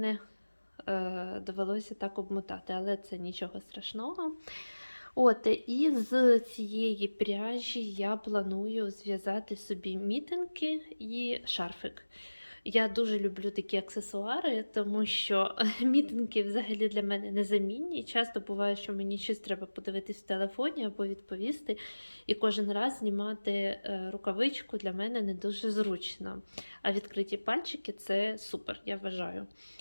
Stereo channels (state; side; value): inverted; both; correlation -1.00